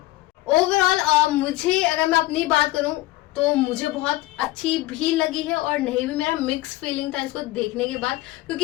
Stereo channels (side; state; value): right; quieter; 17.9 dB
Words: ओवरऑल। मुझे अगर मैं अपनी बात करूं तो मुझे बहुत अच्छी भी लगी है और नहीं भी। मेरा मिक्स फीलिंग था इसको देखने के बाद,